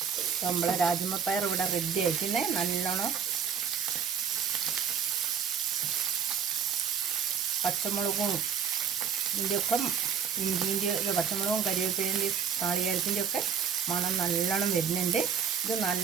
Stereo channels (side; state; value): left; quieter; 7.7 dB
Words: നമ്മളെ രാജമ്മപ്പയർ ഇവിടെ റെഡി ആയിക്കുന്നേ. നല്ലോണം പച്ചമുളകും ഇതിൻ്റെയൊക്കെ ഇഞ്ചിൻ്റെ പച്ചമുളകും കരിവേപ്പിലിൻ്റെ നാളികേരത്തിൻ്റെ ഒക്കെ മണം നല്ലോണം വരുന്നുണ്ട്. ഇത്